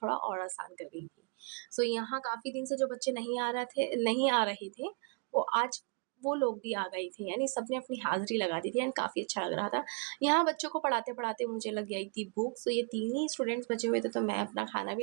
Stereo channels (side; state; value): left; quieter; 37.4 dB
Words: थोड़ा और आसान कर गई थी। सो यहाँ काफ़ी दिन से जो बच्चे नहीं आ रहे थे, वो आज वो लोग भी आ गए थे, यानी सबने अपनी हाज़िरी लगा दी थी एंड काफ़ी अच्छा लग रहा था। यहाँ बच्चों को पढ़ाते-पढ़ाते मुझे लग गई थी भूख, सो ये 3 ही स्टूडेंट्स बचे हुए थे, तो मैं अपना खाना